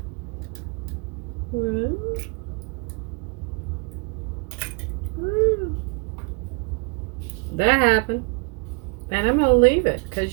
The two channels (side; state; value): left; quieter; 32.4 dB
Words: That happened. And I'm going to leave it